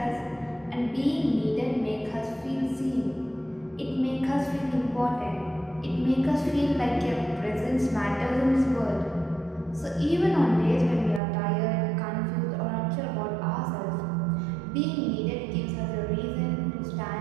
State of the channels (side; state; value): left; drops out; at 11.2 s